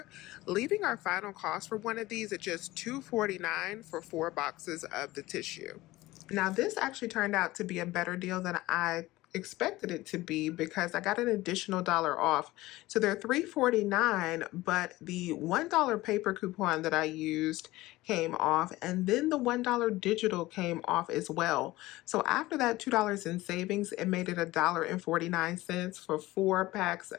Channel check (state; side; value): quieter; right; 18.4 dB